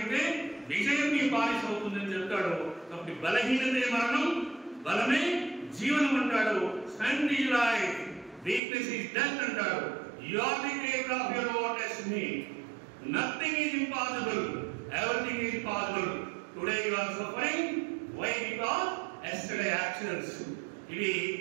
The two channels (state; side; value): drops out; left; at 8.6 s